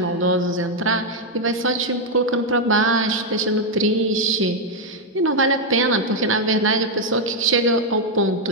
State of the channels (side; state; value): both; normal; correlation 0.01